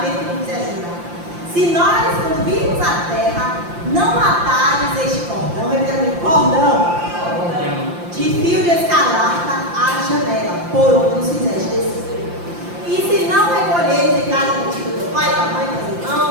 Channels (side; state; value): left; late; 5.8 ms